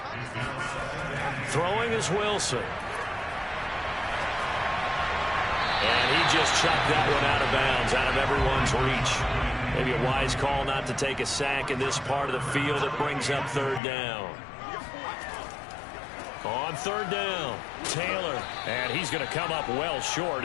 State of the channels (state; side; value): drops out; right; at 13.8 s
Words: Throwing is Wilson. And he just chucked that one out of bounds, out of everyone's reach. Maybe a wise call not to take a sack in this part of the field. It brings up 3rd down. On 3rd down, Taylor. And he's going to come up well short